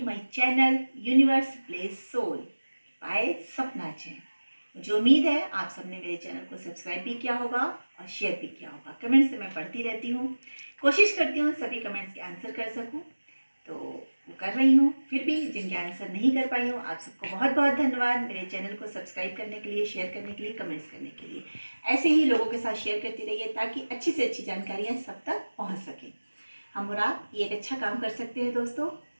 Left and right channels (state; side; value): inverted; both; correlation -1.00